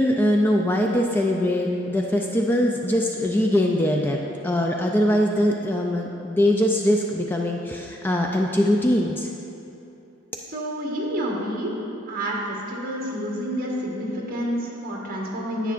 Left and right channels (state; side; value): normal; both; correlation 0.76